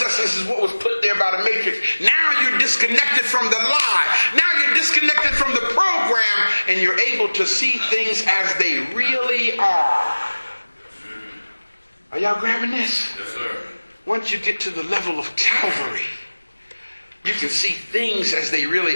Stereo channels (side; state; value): both; inverted; correlation -1.00